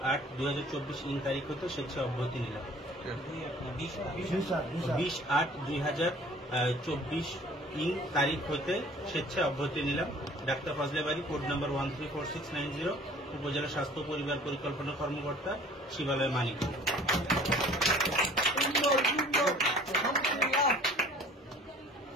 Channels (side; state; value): both; normal; correlation 0.50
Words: তারিখ হতে স্বেচ্ছায় অব্যাহতি নিলাম। 20/8/2024 তারিখ হতে স্বেচ্ছায় অব্যাহতি নিলাম। ডাক্তার ফজলে বারী, কোড নাম্বার 134690, উপজেলা স্বাস্থ্য পরিবার পরিকল্পনা কর্মকর্তা, শিবালয়, মানিকগঞ্জ।